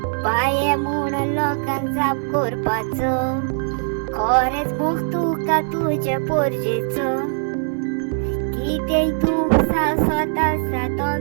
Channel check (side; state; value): left; silent; digital silence